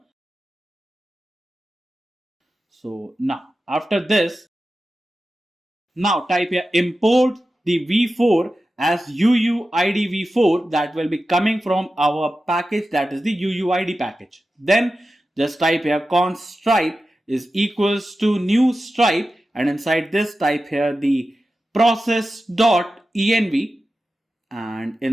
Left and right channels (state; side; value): normal; both; correlation 0.93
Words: So now after this, now type here import the v4 as UUID v4 that will be coming from our package, that is the UUID package. Then just type here const stripe is equals to new stripe, and inside this type here the process.env, and